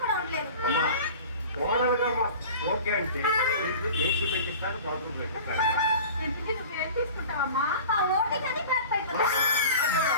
కూడా ఉండలేను. అమ్మా కోడలుగా ఓకే అంటే ఏసీ పెట్టిస్తాను, బాత్రూమ్ పెట్టిస్తాను. ఇంటికి నువ్వేం తీసుకుంటావమ్మా? ఆ ఓటింగ్ అది బ్యాక్ అయిపోతుంది.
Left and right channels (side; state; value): both; inverted; correlation -0.39